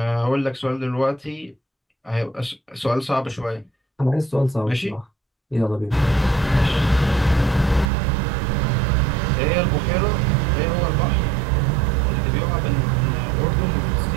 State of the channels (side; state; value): left; drops out; at 7.9 s